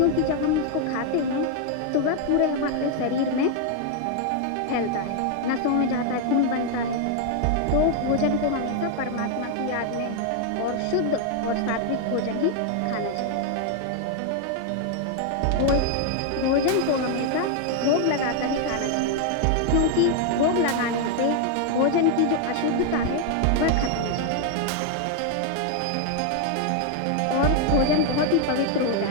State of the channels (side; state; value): both; different; correlation 0.00